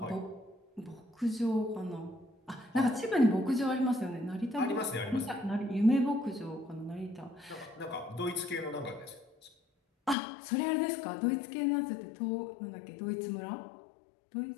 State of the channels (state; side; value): drops out; right; at 10.2 s